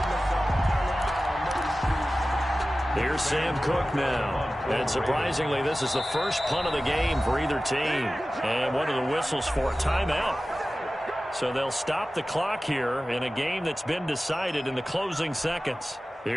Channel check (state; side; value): normal; both; correlation 0.96